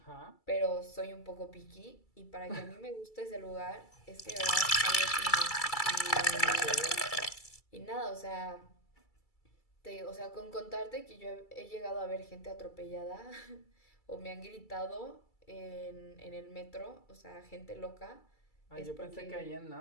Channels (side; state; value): right; late; 2.3 ms